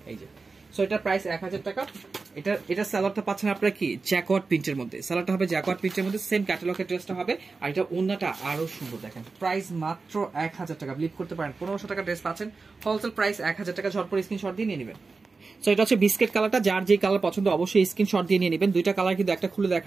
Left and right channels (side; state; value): left; quieter; 4.2 dB